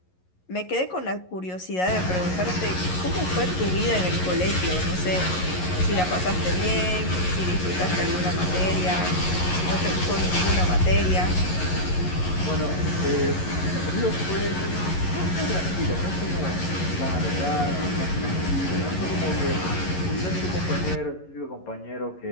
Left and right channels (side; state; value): right; late; 11 ms